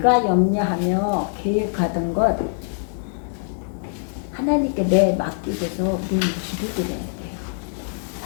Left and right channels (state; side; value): silent; right; digital silence